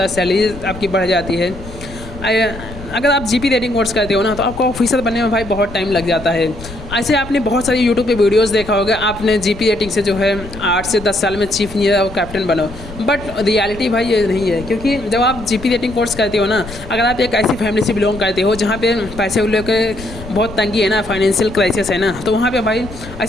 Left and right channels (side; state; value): left; noise; rumble, 14 dB below the sound